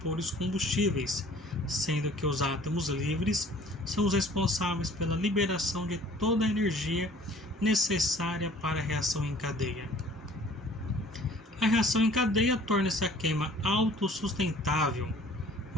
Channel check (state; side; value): normal; both; correlation 0.51